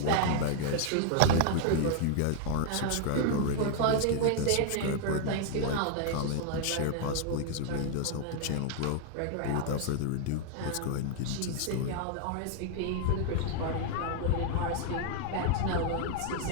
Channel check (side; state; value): both; different; correlation 0.00